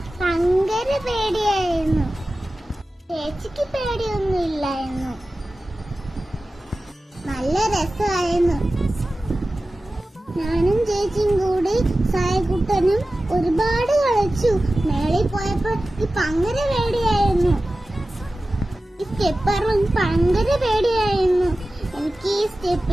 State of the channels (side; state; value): both; normal; correlation 0.95